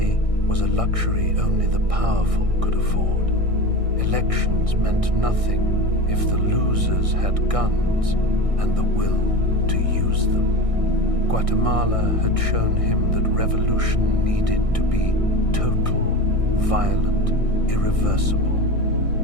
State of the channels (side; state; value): left; late; 1.6 ms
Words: was a luxury only the powerful could afford. Elections meant nothing if the losers had guns and the will to use them. Guatemala had shown him that revolution needed to be total, violent, irreversible.